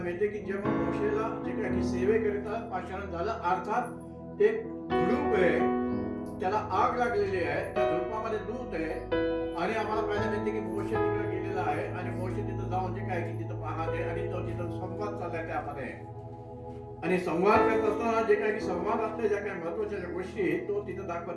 मिळते की जेव्हा मोशेला जे काय की सेवेकरिता पाचारण झालं, अर्थात एक झुडूप आहे, त्याला आग लागलेली आहे, त्या झुडपामध्ये दूत आहे आणि आम्हाला पाहायला मिळते की मोशे तिकडे गेलेला आहे आणि मोशे तिथं जाऊन जे काय की तिथं पाहते आणि तो तिथं संवाद चाललाय त्यामध्ये. आणि संवाद करत असताना जे काय की संवादातल्या ज्या काही महत्वाच्या गोष्टी तो तिथं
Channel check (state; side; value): identical; both; correlation 1.00